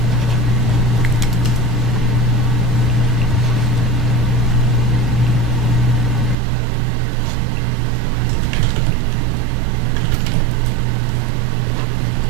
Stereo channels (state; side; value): drops out; left; at 6.4 s